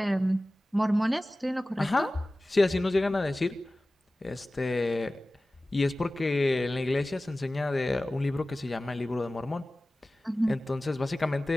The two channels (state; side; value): normal; both; correlation 0.97